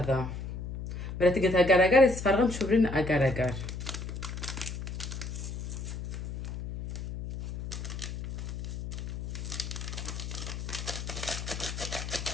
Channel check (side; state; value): left; noise; hum, 7 dB below the sound